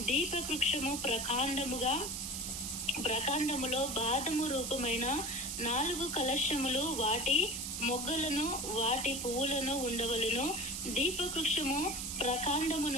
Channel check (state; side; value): noise; right; hiss, 4 dB below the sound